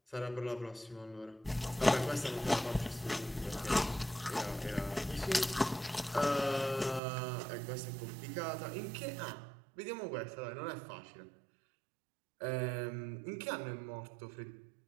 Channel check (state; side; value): drops out; left; at 7.0 s